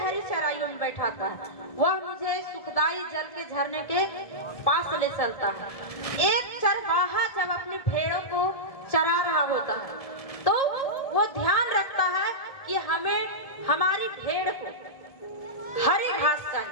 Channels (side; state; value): right; late; 1.7 ms